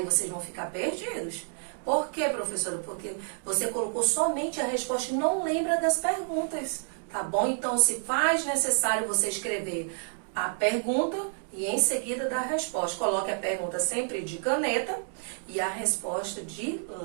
vocês vão ficar perdidos. Por quê, professora? Porque você colocou somente a resposta e não lembra das perguntas, tá bom? Então, se faz necessário você escrever a pergunta e em seguida dar a resposta. Coloque a pergunta sempre de caneta e a resposta de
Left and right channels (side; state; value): left; silent; 58 dB below the other